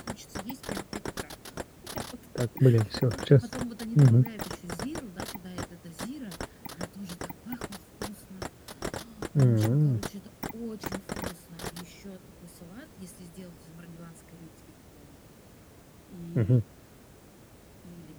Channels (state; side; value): identical; both; correlation 1.00